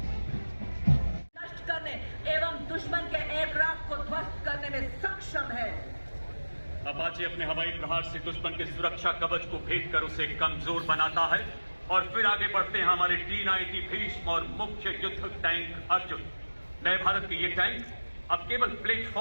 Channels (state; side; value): inverted; both; correlation -1.00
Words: नष्ट करने एवं दुश्मन के एयरक्राफ्ट को ध्वस्त करने में सक्षम है। अपाचे अपने हवाई प्रहार से दुश्मन के सुरक्षा कवच को भेद कर उसे कमजोर बनाता है और फिर आगे बढ़ते हैं हमारे T-90 भीष्म और मुख्य युद्ध टैंक अर्जुन। नए भारत के ये टैंक अब केवल